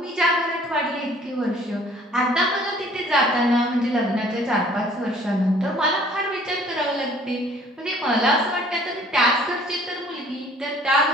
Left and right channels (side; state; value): both; normal; correlation 0.55